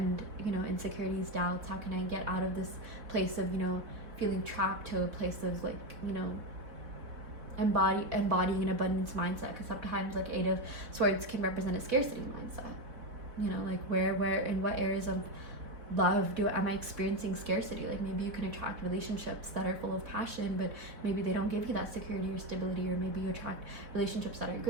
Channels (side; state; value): left; late; 3.9 ms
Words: you know, insecurities, doubts? How can I get out of this place of, you know, feeling trapped to a place of, like, you know, embodying an abundance mindset? Because sometimes, like, Eight of Swords can represent a scarcity mindset, you know, like where in what areas of love am I experiencing scarcity? Like, maybe you can attract relationships that are full of passion, but maybe they don't give you that security or stability. Or maybe you attract relationships that are